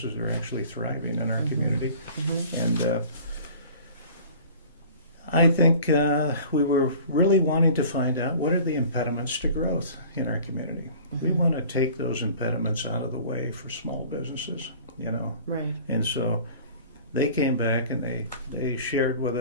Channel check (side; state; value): both; inverted; correlation -0.45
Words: are actually thriving in our community. And I think we were really wanting to find out, what are the impediments to growth in our community? We want to take those impediments out of the way for small businesses, Right. And so they came back and they shared with